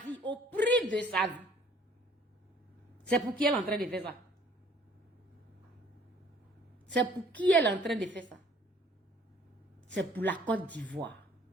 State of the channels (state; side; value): normal; both; correlation 0.57